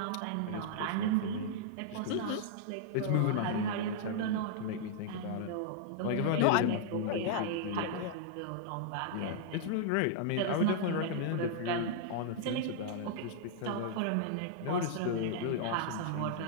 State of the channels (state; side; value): different; both; correlation -0.01